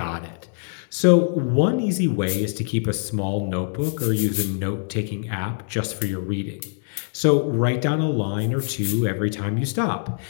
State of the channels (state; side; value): silent; right; 63 dB below the other